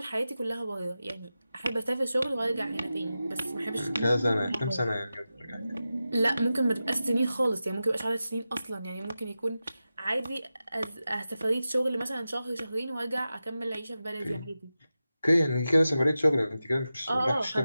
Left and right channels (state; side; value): inverted; both; correlation -0.92